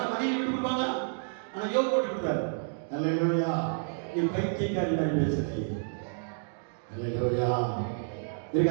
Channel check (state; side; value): silent; left; digital silence